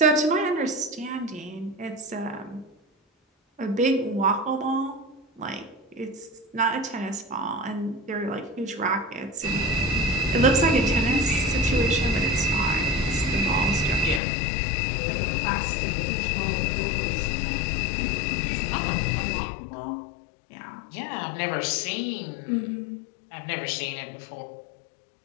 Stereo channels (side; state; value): right; drops out; at 14.2 s